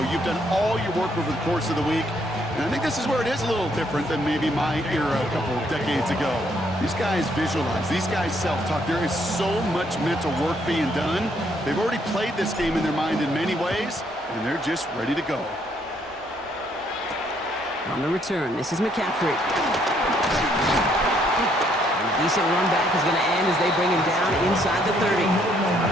You've done all your work over the course of the week. And I think this is where it is a little different than maybe my era a couple of decades ago. These guys visualize. These guys self-talk. There is so much mental work being done. They've already played this game in their mind in many ways, and they're just ready to go. On the return, this is McCaffrey. A decent run back is going to end as they bring him down inside the 30.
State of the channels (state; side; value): normal; both; correlation 0.70